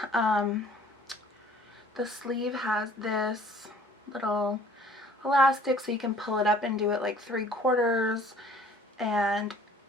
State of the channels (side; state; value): both; normal; correlation 0.54